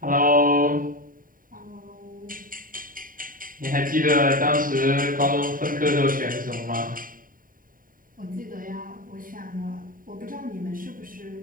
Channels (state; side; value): late; left; 0.41 ms